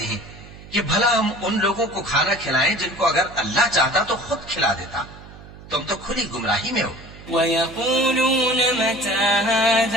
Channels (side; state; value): right; noise; hum, 18 dB below the sound